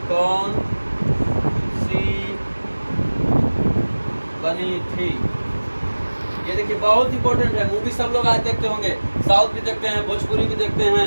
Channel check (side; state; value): both; inverted; correlation -1.00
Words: कौन सी बनी थी? ये देखिए, बहुत इंपॉर्टेंट है। मूवी सब लोग आज देखते होंगे, साउथ भी देखते हैं, भोजपुरी भी देखते